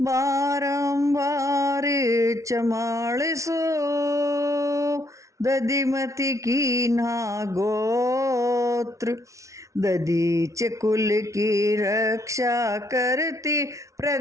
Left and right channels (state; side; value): late; left; 0.15 ms